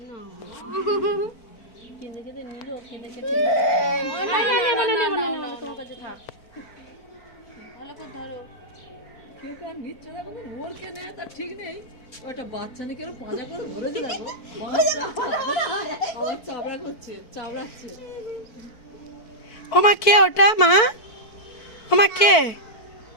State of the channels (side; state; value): right; late; 4.5 ms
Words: কেঁদে কেঁদে নিল কেঁদে কেঁদে তোমার কাছে থাক ভালো করে ধরো কেউ কার নিচ্ছে না বলে ওর কে নেবে তার ঠিক নেই ওটা বাচ্চা নিয়ে কেন পাজা করে ধরেছে দেখো চাবড়া করছে চাবড়াচ্ছে ও মা কে ওটা মা ও মা কে